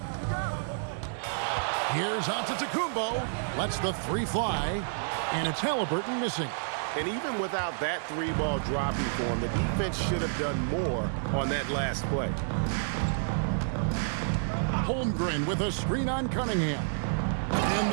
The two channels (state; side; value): silent; left; digital silence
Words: Here's Antetokounmpo. Lets the 3 fly. And it's Halliburton missing. And even without that 3-ball dropping for him, the defense should have done more on that last play. Holmgren with a screen on Cunningham. And